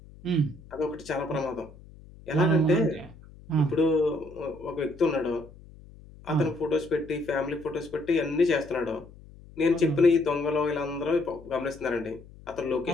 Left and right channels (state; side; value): noise; left; hum, 21 dB below the sound